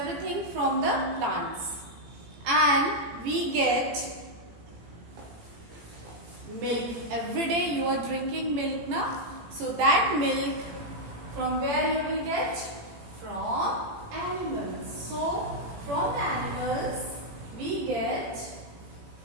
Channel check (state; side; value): late; left; 18 ms